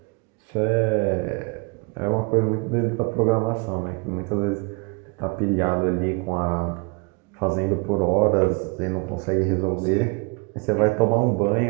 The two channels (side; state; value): left; quieter; 30.8 dB